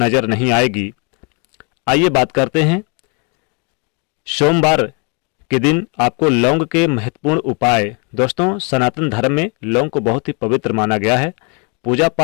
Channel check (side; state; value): right; quieter; 32.7 dB